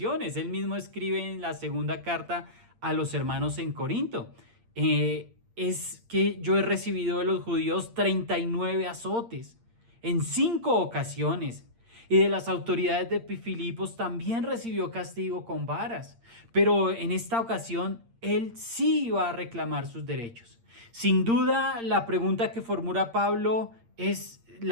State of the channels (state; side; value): late; left; 8.7 ms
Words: Él mismo escribe en la segunda carta a los hermanos en Corinto: es que yo he recibido de los judíos 39 azotes en 5 ocasiones. Y de las autoridades de Filipos también recibió castigo con varas. Pero en esta ocasión él sí iba a reclamar sus derechos. Sin duda, la pregunta que formula Pablo